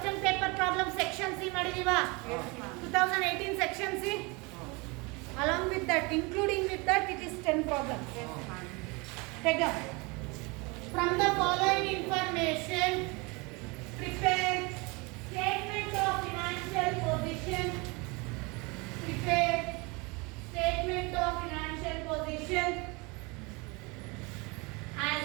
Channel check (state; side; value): quieter; left; 27.3 dB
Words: paper problem section C ಮಾಡಿದೀವಾ? 2018 section C? Along with that, including with that, it is 10 problems. Take up. From the following information, prepare statement of financial position. Prepare statement of financial position as